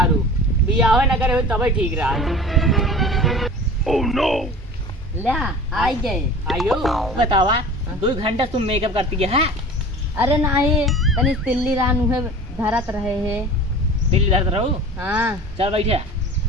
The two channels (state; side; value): normal; both; correlation 0.39